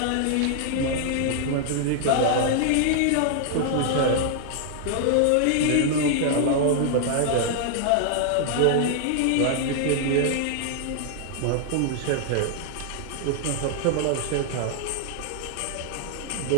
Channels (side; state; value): both; different; correlation -0.01